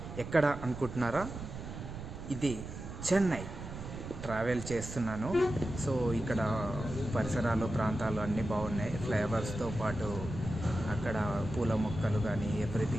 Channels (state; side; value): noise; right; rumble, 9 dB below the sound